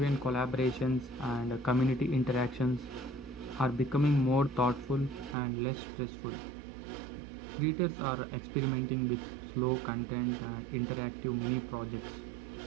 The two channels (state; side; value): drops out; left; at 5.4 s